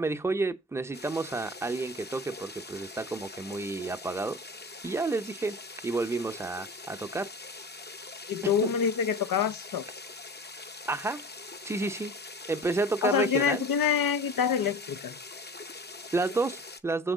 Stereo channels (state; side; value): normal; both; correlation 0.37